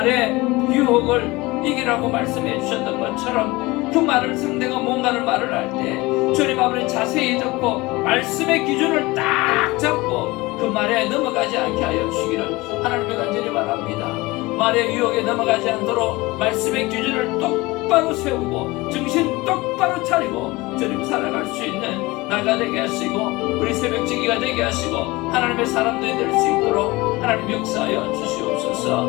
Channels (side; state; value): right; quieter; 21.7 dB